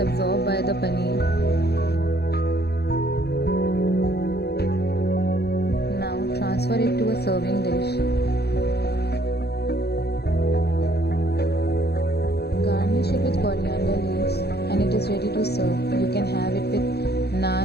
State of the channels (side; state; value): right; late; 0.47 ms